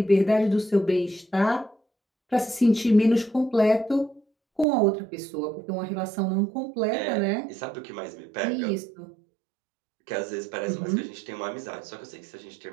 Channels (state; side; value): drops out; left; at 4.7 s